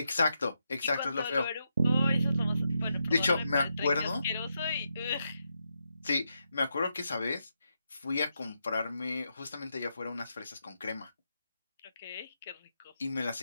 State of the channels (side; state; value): both; inverted; correlation -0.83